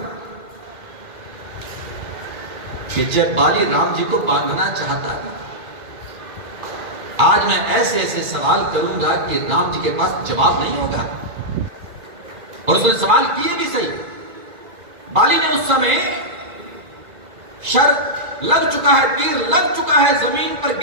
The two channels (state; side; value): late; left; 2.3 ms